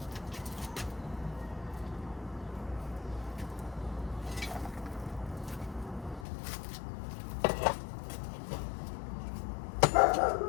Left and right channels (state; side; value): drops out; right; at 6.2 s